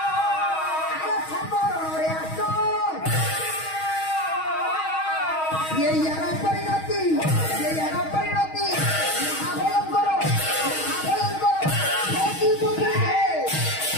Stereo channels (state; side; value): late; right; 6.3 ms